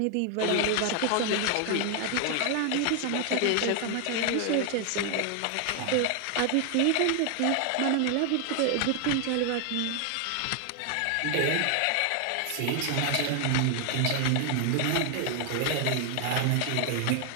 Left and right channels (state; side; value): different; both; correlation 0.00